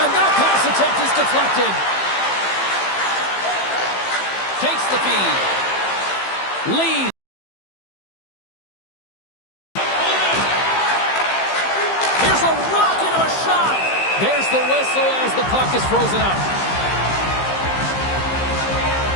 that pass attempt is deflected. Takes the feed. Lead. Here's a rocket of a shot. There's the whistle as the puck is frozen up.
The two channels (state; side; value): late; right; 15 ms